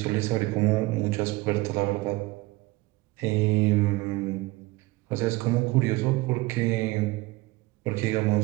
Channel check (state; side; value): quieter; left; 21.0 dB